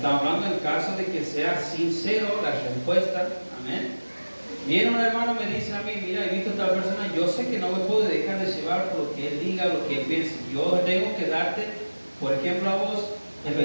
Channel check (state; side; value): inverted; both; correlation -1.00